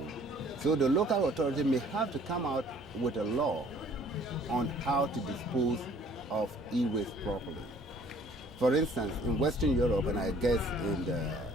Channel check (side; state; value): both; normal; correlation 0.56